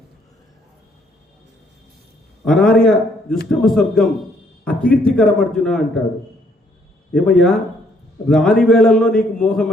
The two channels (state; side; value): normal; both; correlation 0.67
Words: అనార్య దుష్టమ స్వర్గం అకీర్తికరం అర్జున అంటాడు. ఏమయ్యా, రాని వేళల్లో నీకు మోహం